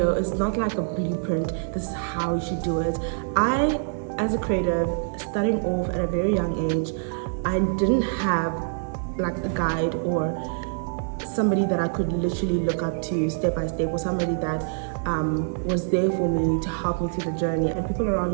it's not like a blueprint, this is how you should do it. I, as a creative, starting off at a very young age, I didn't have like a guide or somebody that I could literally look up to step by step, or somebody that was there for me to help me through the journey. And people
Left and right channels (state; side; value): silent; left; 58 dB below the other